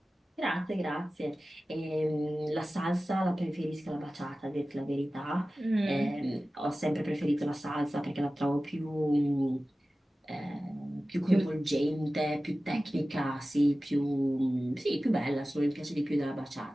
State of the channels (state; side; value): normal; both; correlation 0.96